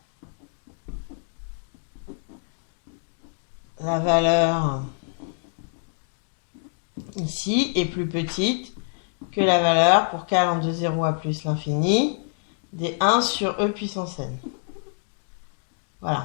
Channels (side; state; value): right; silent; 61 dB below the other